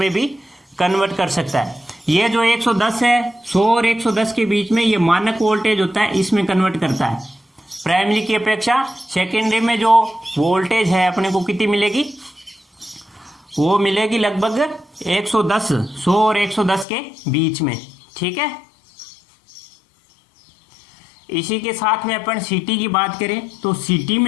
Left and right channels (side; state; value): right; drops out; at 16.9 s